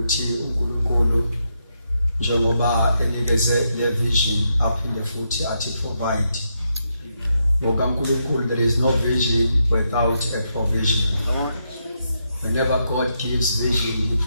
uNkulunkulu njengoba enikeze le vision aphinde futhi athi provide. NgokaNkulunkulu there is no vision without a provision. Whenever God gives vision, He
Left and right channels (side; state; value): both; inverted; correlation -0.81